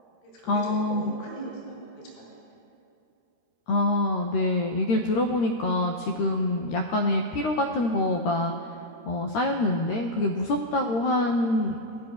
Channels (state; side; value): late; right; 13 ms